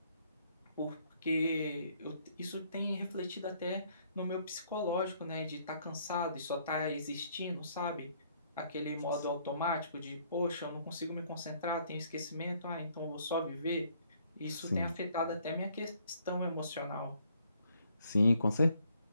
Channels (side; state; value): both; inverted; correlation -0.66